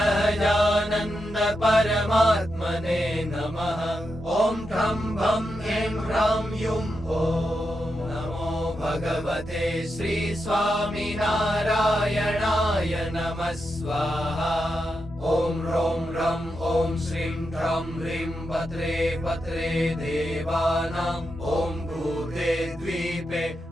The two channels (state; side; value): normal; both; correlation 0.86